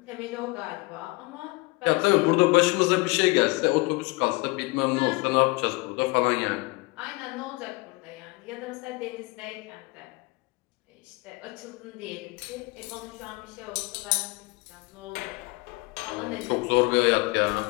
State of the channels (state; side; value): quieter; right; 24.8 dB